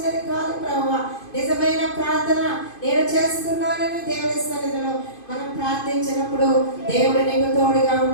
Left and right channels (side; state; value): right; late; 2.5 ms